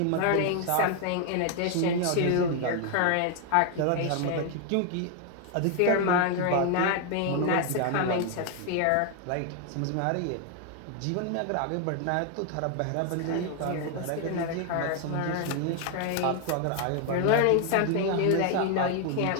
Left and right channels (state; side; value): different; both; correlation 0.00